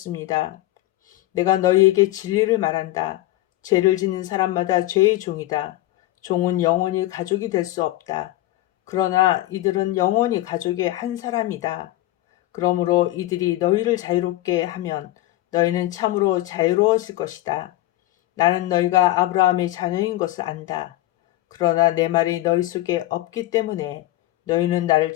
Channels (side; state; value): right; quieter; 16.3 dB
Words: 내가 너희에게 진리를 말한다. 죄를 짓는 사람마다 죄의 종이다. 종은 영원히 가족이 될 수 없다. 그러나 이들은 영원히 가족의 한 사람이다. 그러므로 이들이 너희를 자유롭게 하면 너희는 참으로 자유로워질 것이다. 나는 너희가 아브라함의 자녀인 것을 안다. 그러나 내 말이 너희 속에 없기 때문에 너희는 나를